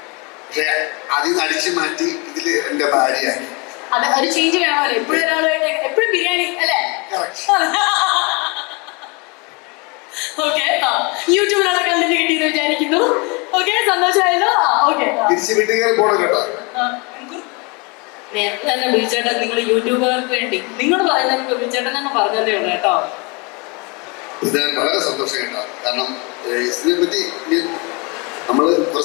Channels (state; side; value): quieter; right; 29.6 dB